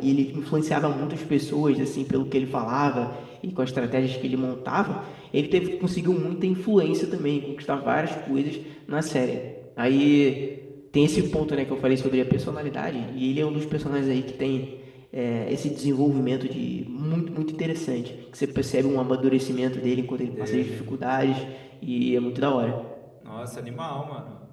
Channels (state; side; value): identical; both; correlation 1.00